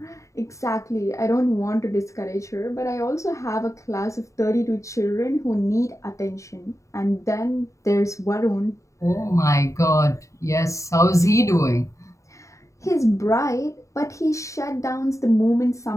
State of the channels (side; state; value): right; late; 0.15 ms